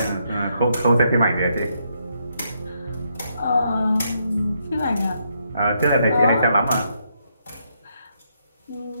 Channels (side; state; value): both; inverted; correlation -0.77